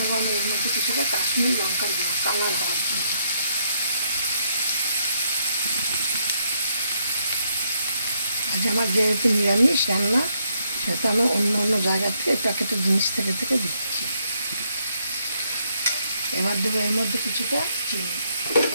আমি এর মধ্যে কিছুটা কাশ্মীরি লঙ্কার গুঁড়ো, কালার হওয়ার জন্য। আজ আমার যেহেতু নিরামিষ রান্না, সেটা আমি অন্য অন্য জায়গা থেকে প্যাকেটের জিনিস থেকে দিচ্ছি। এবার দেবো এর মধ্যে কিছুটা চিনি।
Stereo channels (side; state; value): both; inverted; correlation -0.74